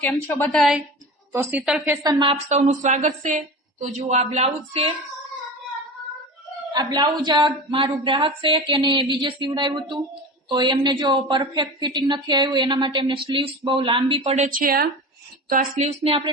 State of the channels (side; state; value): both; normal; correlation 0.30